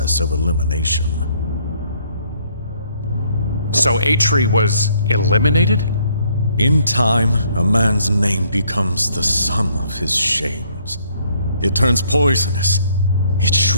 of elimination. So Atri was eliminated? In time, a man's name becomes the sum of his shames. It turns poisonous. It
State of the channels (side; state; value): both; inverted; correlation -0.66